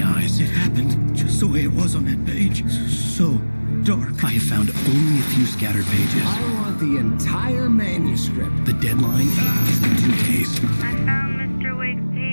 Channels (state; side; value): inverted; both; correlation -1.00